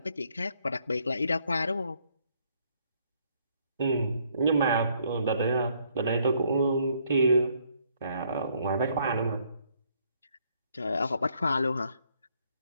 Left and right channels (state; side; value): inverted; both; correlation -0.69